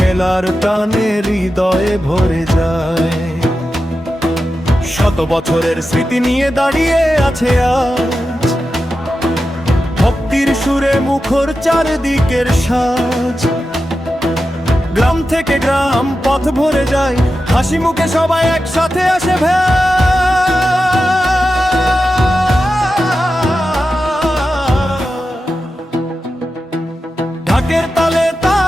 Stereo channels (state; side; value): normal; both; correlation 0.91